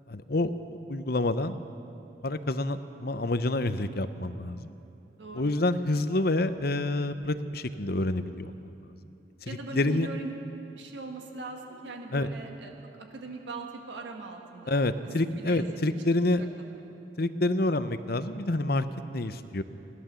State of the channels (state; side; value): normal; both; correlation 0.55